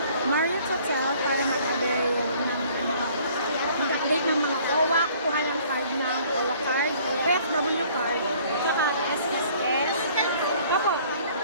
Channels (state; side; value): inverted; both; correlation -0.56